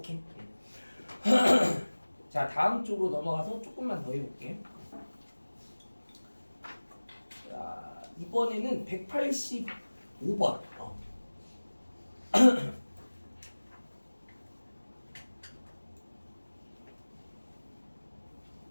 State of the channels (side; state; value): both; inverted; correlation -1.00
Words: 자 다음 쪽으로 넘어가서 조금만 더 해볼게. 자 이번에는 185번.